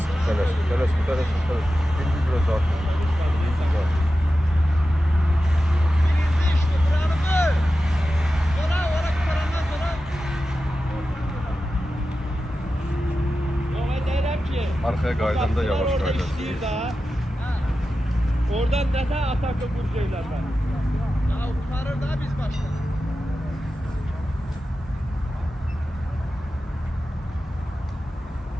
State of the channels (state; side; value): normal; both; correlation 0.93